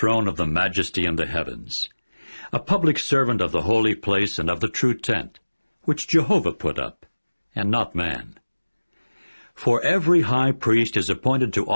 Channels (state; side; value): inverted; both; correlation -1.00